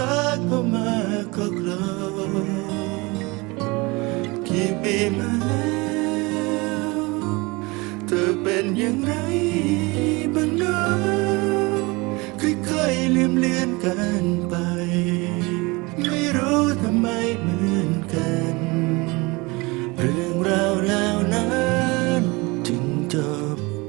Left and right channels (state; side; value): quieter; left; 25.1 dB